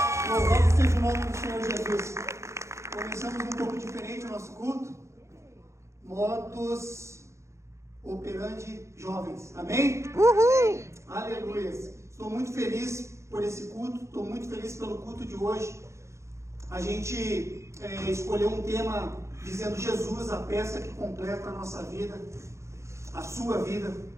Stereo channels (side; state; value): left; late; 0.14 ms